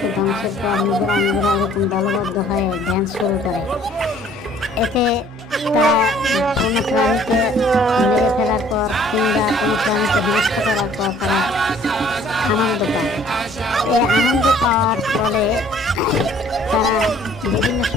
ধ্বংসের পর নিজেরা এরকম দলবদ্ধ হয়ে ড্যান্স শুরু করে। এতে তারা কোনো প্রাণীকে মেরে ফেলার পর কিংবা কোনো প্রাণীকে বিনষ্ট করার পর তারা আনন্দ পায়। এই আনন্দ পাওয়ার ফলে তারা বিভিন্ন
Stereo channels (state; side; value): normal; both; correlation 0.57